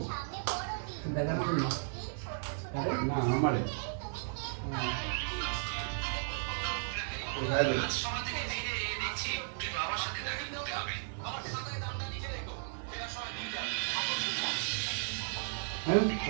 না আমারে হ্যাঁ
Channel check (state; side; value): silent; left; 54 dB below the other